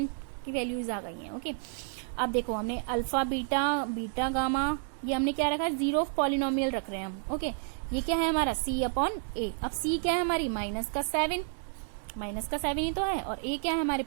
की वैल्यूज आ गई हैं। ओके, अब देखो हमने अल्फा बीटा बीटा गामा ये हमने क्या रखा है, जीरो ऑफ पॉलिनोमियल रख रहे हैं हम। ओके, ये क्या है हमारा C/A, अब C क्या है हमारी -7 ही तो है और A क्या है हमारे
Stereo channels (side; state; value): left; silent; 57 dB below the other